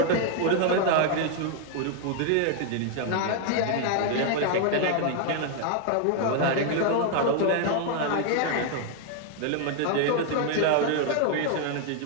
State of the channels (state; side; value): different; both; correlation 0.00